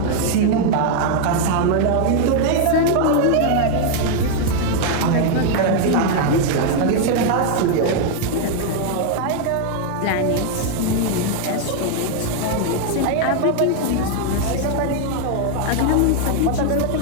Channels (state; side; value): different; both; correlation 0.00